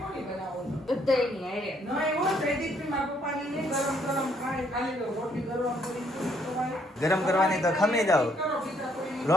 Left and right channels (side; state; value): both; normal; correlation 0.68